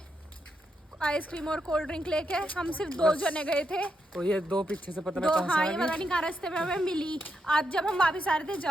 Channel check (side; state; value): both; normal; correlation 0.82